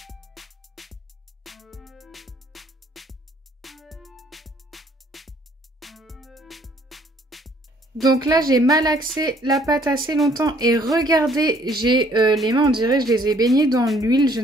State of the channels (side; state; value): both; normal; correlation 0.61